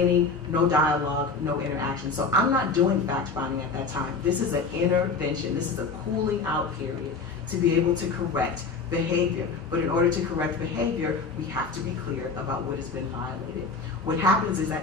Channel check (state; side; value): quieter; right; 4.5 dB